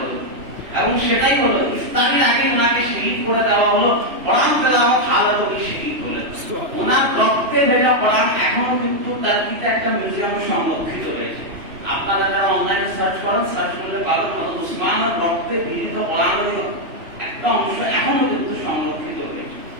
এবং সেটাই হলো, ইফতারির আগে ওনাকে শহীদ করে দেওয়া হলো। কোরআন তেলাওয়াত হালাত শহীদ করে ওনার রক্তে ভেজা কোরআন এখনো কিন্তু টার্কিতে একটা মিউজিয়ামে সংরক্ষিত রয়েছে। আপনারা যারা অনলাইনে সার্চ করেন, সার্চ করলে পাবেন হযরত উসমানের রক্তে বিলিত কোরআনের একটা অংশ এখনো কিন্তু সংরক্ষিত রয়েছে।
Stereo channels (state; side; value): late; left; 3.0 ms